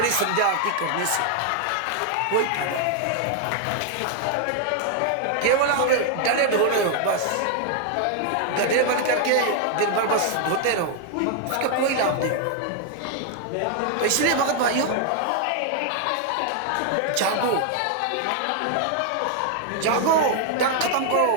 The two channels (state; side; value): different; both; correlation 0.00